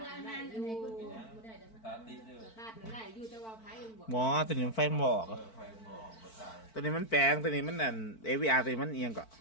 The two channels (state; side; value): late; right; 4.5 ms